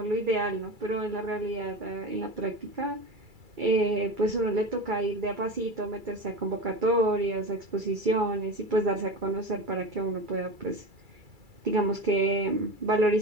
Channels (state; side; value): late; left; 2.3 ms